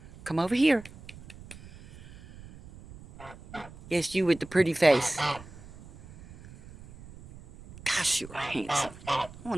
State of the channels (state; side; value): noise; right; rumble, 19 dB below the sound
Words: Come over here. Yes, you with the pretty face. Gosh, you are handsome. I